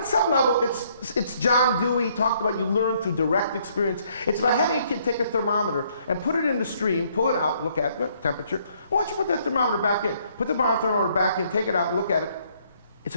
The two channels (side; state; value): both; inverted; correlation -0.67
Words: some level, it's John Dewey talked about you learn through direct experience. It's about having a kid take a thermometer and put it in the stream, pull it out, look at the temperature. Why don't you put that thermometer back in? Put the thermometer back in, take it out, and look at it. It's